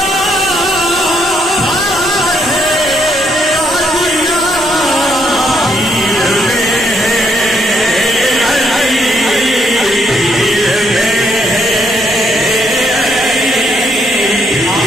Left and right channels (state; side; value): noise; right; hum, 24 dB below the sound